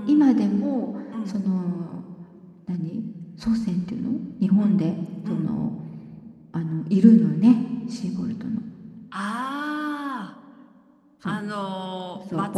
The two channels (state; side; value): identical; both; correlation 1.00